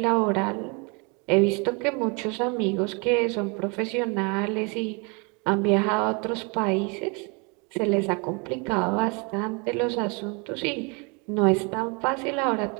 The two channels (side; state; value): left; quieter; 31.7 dB